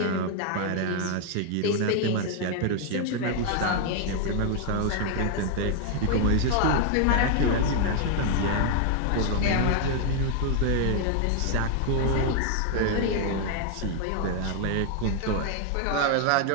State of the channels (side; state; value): both; different; correlation 0.00